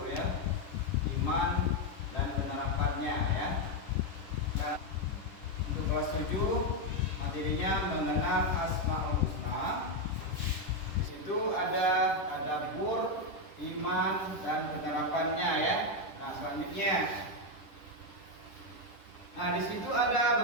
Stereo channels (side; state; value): right; late; 10 ms